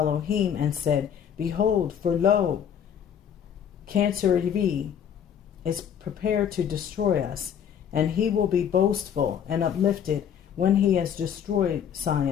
and said, Behold, for lo, Cancer is prepared to destroy us, and he will be boastful and uplifted when he has destroyed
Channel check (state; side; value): quieter; right; 8.6 dB